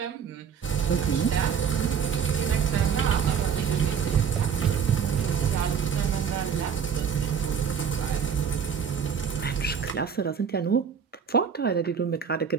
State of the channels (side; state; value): left; quieter; 7.2 dB